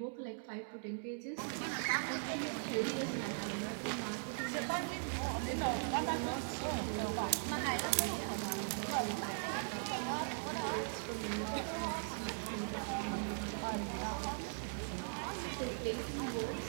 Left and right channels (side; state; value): left; silent; digital silence